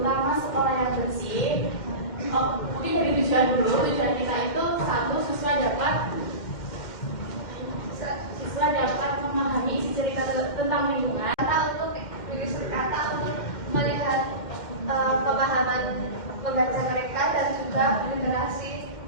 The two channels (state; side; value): late; right; 2.1 ms